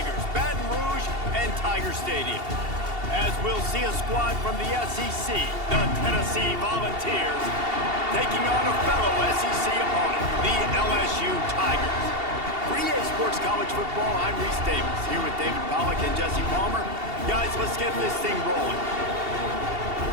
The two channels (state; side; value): late; left; 2.7 ms